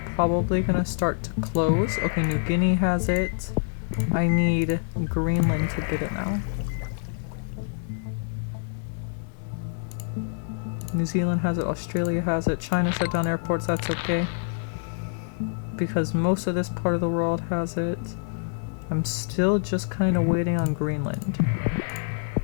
probably gonna start to close. Okay, New Guinea has it. I need Greenland to get it now. New Zealand has it, Australia has it, China shut down airports, that's okay. Because most of this part of the world has it. I'm still just kind of waiting on Greenland.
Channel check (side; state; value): right; silent; digital silence